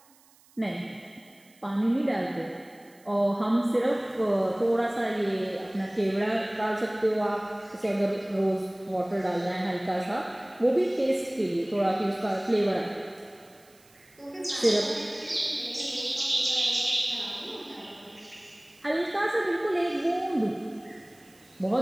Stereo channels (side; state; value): right; noise; hiss, 29 dB below the sound